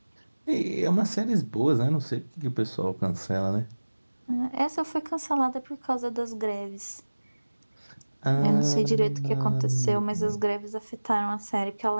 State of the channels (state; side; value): inverted; both; correlation -1.00